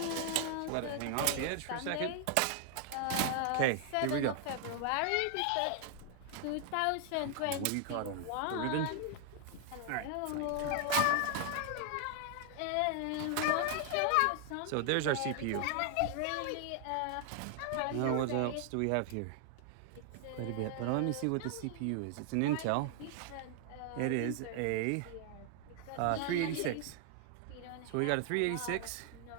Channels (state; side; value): different; both; correlation 0.00